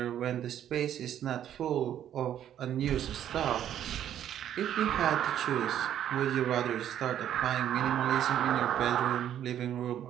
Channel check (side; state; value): left; quieter; 10.6 dB